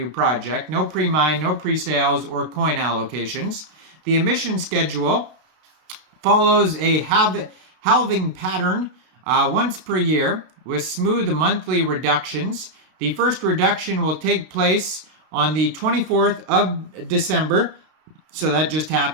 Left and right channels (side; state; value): left; late; 32 ms